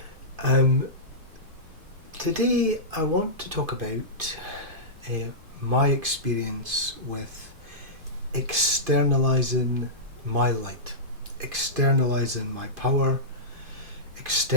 um, Today I want to talk about my experience with externalizing my light, externalizing my power,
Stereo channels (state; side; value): late; left; 2.5 ms